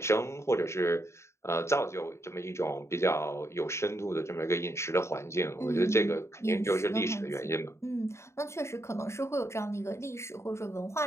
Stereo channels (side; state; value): right; late; 0.13 ms